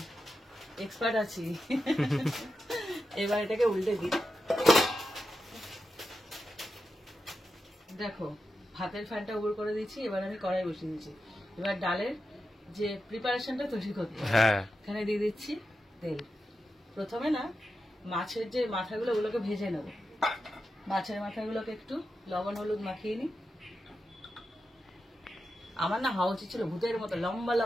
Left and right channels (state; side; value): normal; both; correlation 0.89